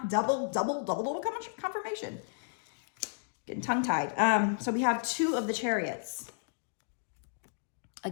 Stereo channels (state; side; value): silent; right; digital silence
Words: double confirmation. Getting tongue-tied. So we have two of the chariots.